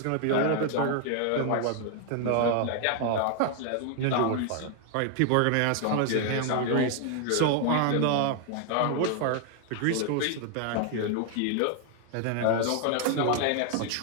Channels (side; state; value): both; different; correlation 0.00